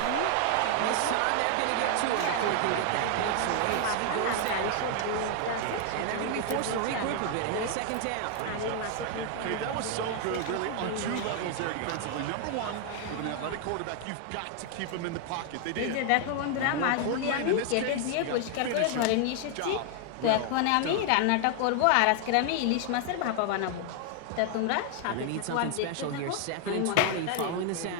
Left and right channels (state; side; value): different; both; correlation 0.00